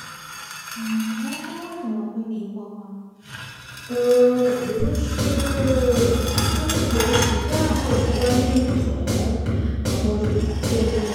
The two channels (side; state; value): both; identical; correlation 1.00